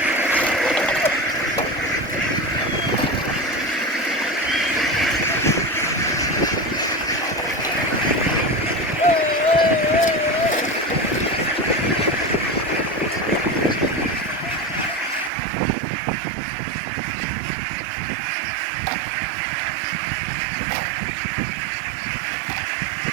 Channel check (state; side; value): drops out; left; at 15.3 s